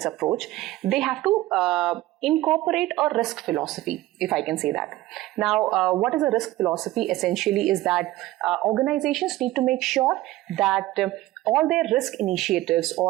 approach, they have to incorporate a risk philosophy, if I can say that. Now, what is a risk philosophy? Essentially is that organizations need to make sure that all their risk initiatives,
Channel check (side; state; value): left; quieter; 16.8 dB